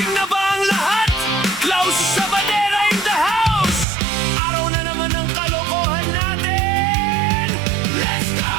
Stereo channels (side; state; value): left; drops out; at 3.9 s